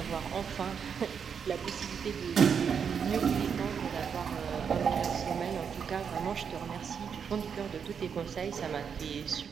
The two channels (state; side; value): quieter; left; 6.9 dB